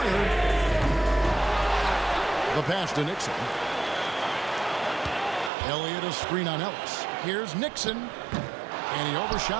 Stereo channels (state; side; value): drops out; left; at 5.5 s